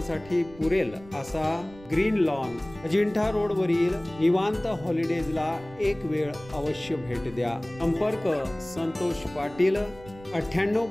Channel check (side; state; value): right; noise; rumble, 20 dB below the sound